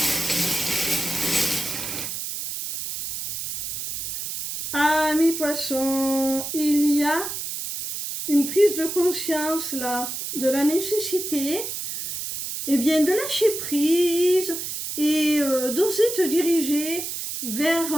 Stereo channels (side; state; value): right; noise; hiss, 5 dB below the sound